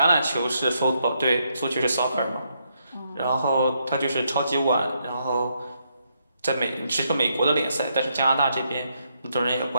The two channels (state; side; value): inverted; both; correlation -0.77